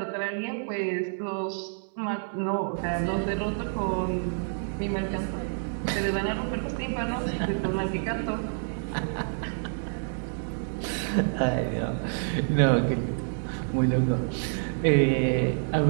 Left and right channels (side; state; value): left; silent; 59 dB below the other